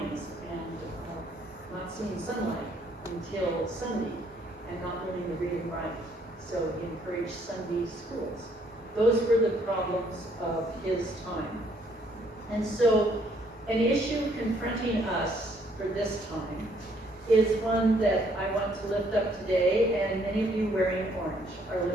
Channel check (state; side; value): normal; both; correlation 0.66